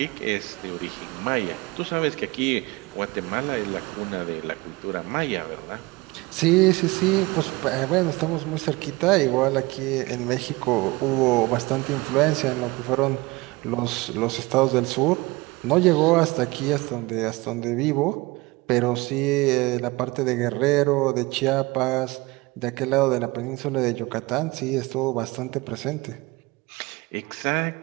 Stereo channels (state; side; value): quieter; left; 23.0 dB